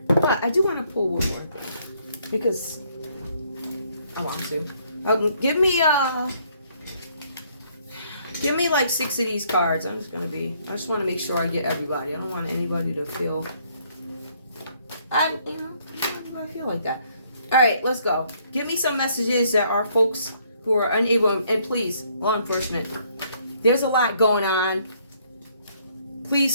But I do want to pull one more thing. Because I want to. Give me like 6 of these cards. I just want to make sure I get everybody. I don't want anybody to feel... everybody feel like that. All right, let's go. Give me some messages that are folks who are unable, and please, law enforcement, there's a lot going on.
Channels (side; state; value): both; inverted; correlation -0.67